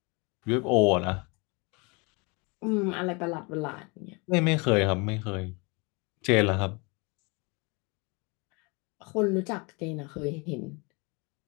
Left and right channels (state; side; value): quieter; right; 29.4 dB